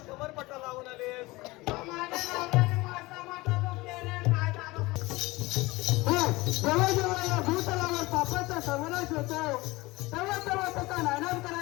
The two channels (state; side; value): quieter; right; 21.5 dB